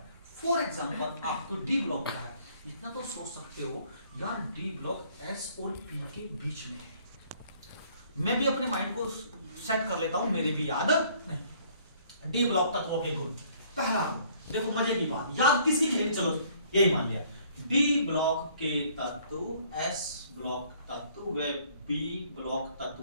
फॉर एग्जांपल आपको डी ब्लॉक का है, इतना तो सोच सकते हो यार डी ब्लॉक एस और पी के बीच में है, मैं भी अपने माइंड को सेट कर लेता हूं, मेरे भी याद नहीं। डी ब्लॉक तत्वों के गुण, पहला देखो मजे की बात, याद किसी के लिए, चलो यही मान लिया, डी ब्लॉक के तत्व एस ब्लॉक तत्व व बी ब्लॉक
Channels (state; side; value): inverted; both; correlation -0.60